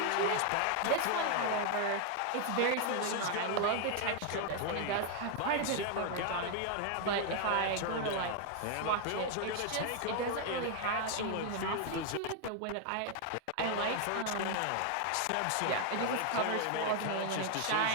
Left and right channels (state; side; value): different; both; correlation 0.00